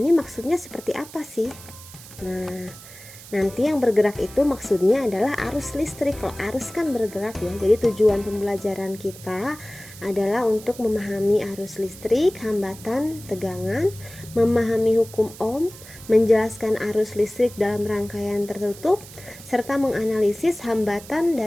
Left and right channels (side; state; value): right; noise; hiss, 17 dB below the sound